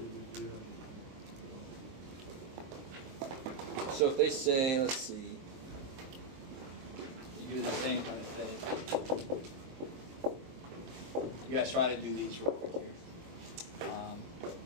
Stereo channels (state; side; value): late; left; 22 ms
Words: So if they say, let's see, you do the same kind of thing. You guys try to do these real quick here.